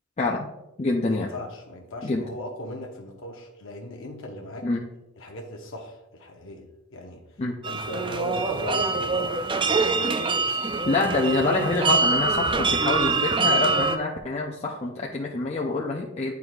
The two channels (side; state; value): both; normal; correlation 0.08